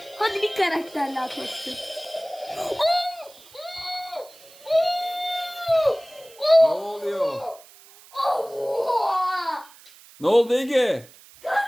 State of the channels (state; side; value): noise; right; hiss, 23 dB below the sound